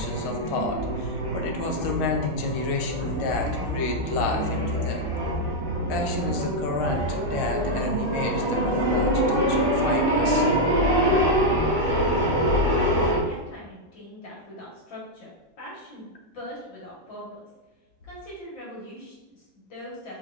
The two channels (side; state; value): both; normal; correlation -0.01